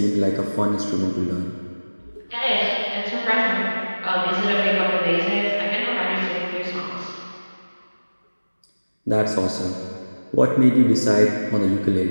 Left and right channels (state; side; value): inverted; both; correlation -1.00